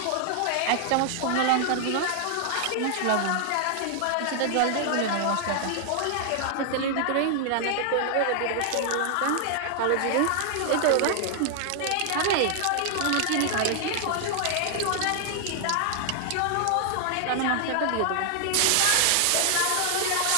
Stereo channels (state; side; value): different; both; correlation 0.00